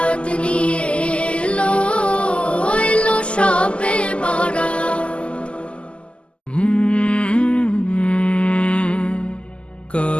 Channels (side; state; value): right; late; 0.054 ms